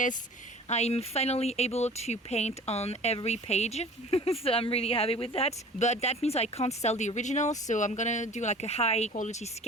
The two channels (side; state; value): both; normal; correlation 0.44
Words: I'm finally able to paint on every page, so I'm really happy with that. But that means I can't sell the original, so I'm gonna do like a high quality